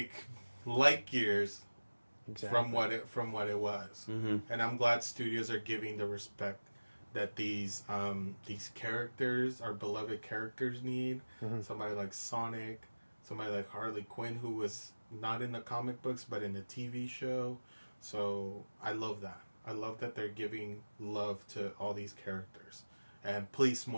light years. Exactly. From what it was, Mm-hmm. and I'm glad studios are giving the respect that these characters, our beloved characters, need. Mm-hmm. Somebody like Sonic, somebody like Harley Quinn, who was not in the comic books but in the TV show. So I love that. I love that they're giving love to all these characters, and please,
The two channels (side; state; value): both; inverted; correlation -1.00